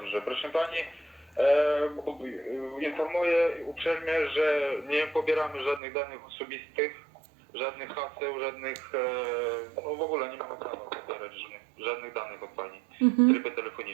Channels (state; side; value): drops out; left; at 5.8 s